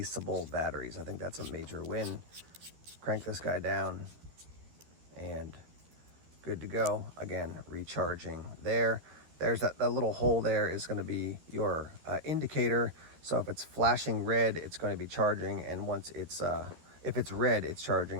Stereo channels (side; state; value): left; late; 13 ms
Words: batteries. I think that's a major win. Crank this guy down and good to go. Again, recharging there. There's that little hole there is going to be your indicator. So if it's flashing red, it's going to be charging, and once it's if it's red, it's